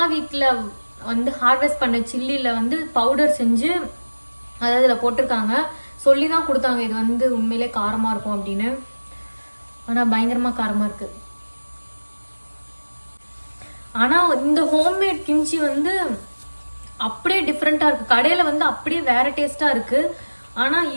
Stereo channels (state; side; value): inverted; both; correlation -1.00